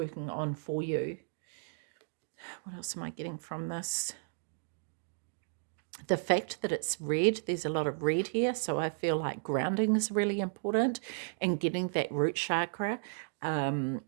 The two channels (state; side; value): silent; left; digital silence